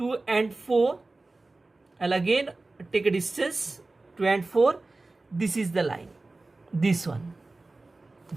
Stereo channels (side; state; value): left; quieter; 3.2 dB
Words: and 4. I'll again take a distance 2 and 4. This is the line, this one,